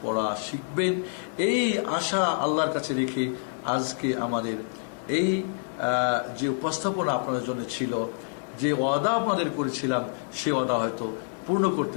পড়া শিখবেন। এই আশা আল্লাহর কাছে রেখে আজকে আমাদের এই যে উপস্থাপনা আপনাদের জন্য ছিল, যে ওয়াদা আপনাদের করেছিলাম, সে ওয়াদা হয়তো পূর্ণ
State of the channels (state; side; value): silent; right; digital silence